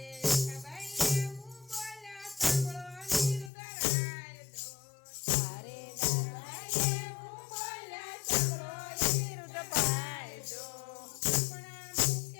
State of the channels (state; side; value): drops out; right; at 3.5 s